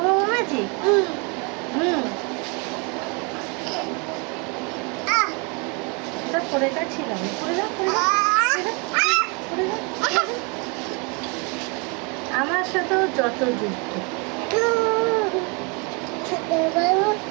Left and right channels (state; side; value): quieter; left; 32.3 dB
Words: বাবু ম্যাজিক? হুম, এটা পরে যাচ্ছিলাম। পরে যাও, পরে যাও, পরে যাও, পরে যাও। আমার সাথেও যত যুক্ত।